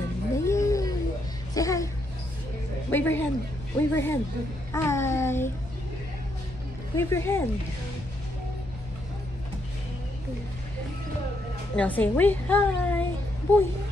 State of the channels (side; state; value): both; normal; correlation 0.77